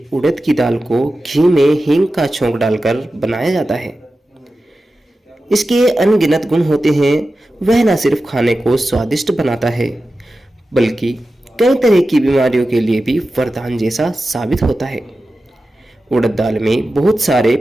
उड़द की दाल को घी में हींग का छोंक डालकर बनाया जाता है। इसके अनगिनत गुण होते हैं। वह न सिर्फ खाने को स्वादिष्ट बनाता है बल्कि कई तरह की बीमारियों के लिए भी वरदान जैसा साबित होता है। उड़द दाल में बहुत सारे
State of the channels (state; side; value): normal; both; correlation 0.93